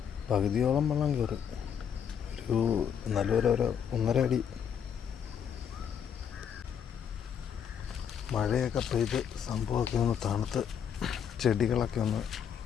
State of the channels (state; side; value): quieter; right; 8.1 dB